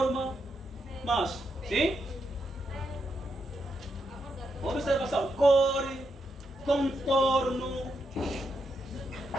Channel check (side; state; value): both; normal; correlation 0.82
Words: mas, sim? Observação, cor, contorno.